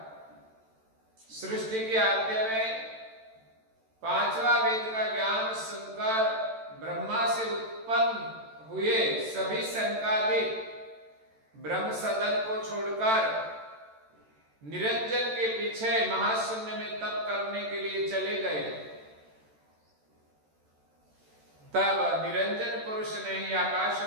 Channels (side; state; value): left; late; 13 ms